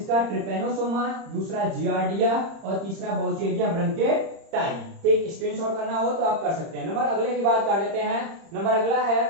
ट्रिपेनोसोमा, दूसरा जियार्डिया और तीसरा बाउचेरिया ब्रैंकियोप्टाइन। ठीक, स्क्रीनशॉट करना हो तो आप कर सकते हैं। नंबर अगले की बात कर लेते हैं। नंबर अगला है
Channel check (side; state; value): left; late; 30 ms